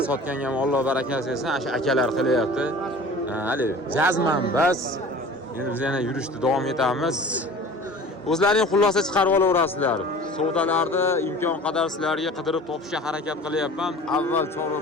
sotganga ham Alloh barakasi bersin, o'sha akalar qilyapti. Hali jazman bas. Endi biz yana yurishni davom etamiz. O'zlaring xulosa chiqarib olaverasizlar. Savdolarni imkon qadar sizlarga qidirib topishga harakat qilyapman. Avval Chorva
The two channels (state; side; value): normal; both; correlation 0.43